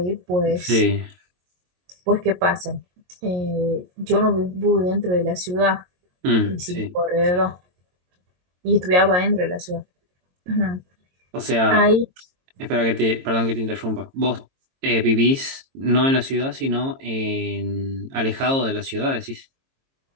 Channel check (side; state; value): left; late; 22 ms